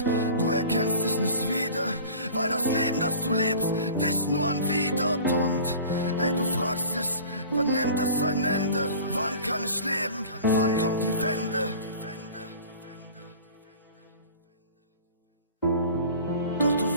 du erkennst dich nicht wieder, weil das Leben, das du lebst, dich nur anwidert. Und ey, du fragst dich, wann nimmt es ein Ende? Wann kann ich leben? Wann kommt die Wende? Doch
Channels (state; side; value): inverted; both; correlation -0.42